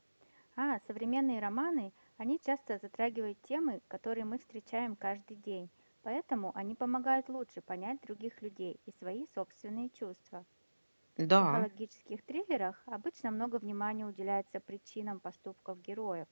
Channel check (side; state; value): both; inverted; correlation -1.00